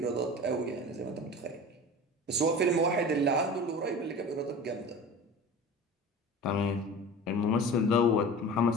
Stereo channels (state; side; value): normal; both; correlation 0.35